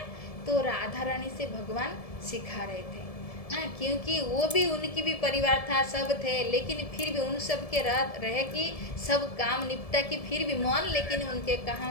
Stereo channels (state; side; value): late; right; 1.7 ms